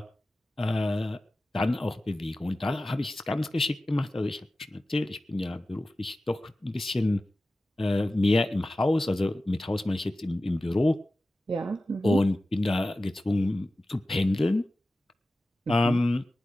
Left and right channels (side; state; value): both; normal; correlation 0.95